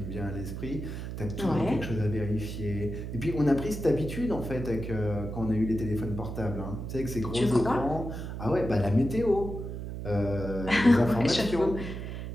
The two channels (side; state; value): right; noise; hum, 7 dB below the sound